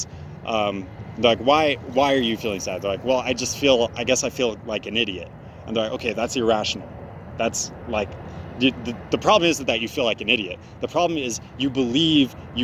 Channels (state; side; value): identical; both; correlation 1.00